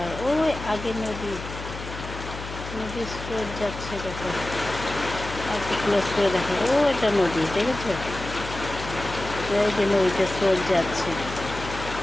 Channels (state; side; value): noise; left; hum, 10 dB below the sound